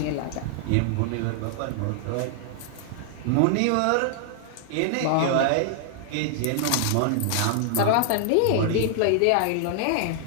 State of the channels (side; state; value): both; different; correlation -0.01